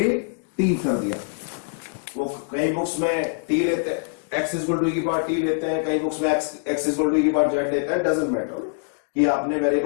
t कर दिया। वो कई बुक्स में t लेते हैं, x इज इक्वल टू की पावर t लेते हैं, कई बुक्स में x इज इक्वल टू की पावर z लेते हैं। डजंट मैटर कि आपने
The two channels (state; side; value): silent; right; digital silence